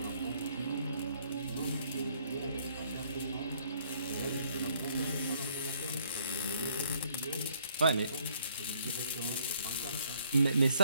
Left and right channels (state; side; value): inverted; both; correlation -0.65